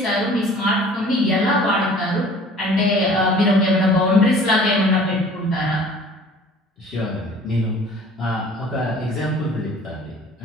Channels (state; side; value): normal; both; correlation 0.49